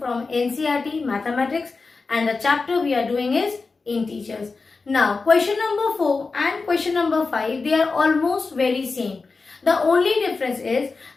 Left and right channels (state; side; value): quieter; right; 4.2 dB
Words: NCERT Mathematics, and the chapter we are doing is integers. Now question number 4 and question number 5, they are almost very same. The only difference is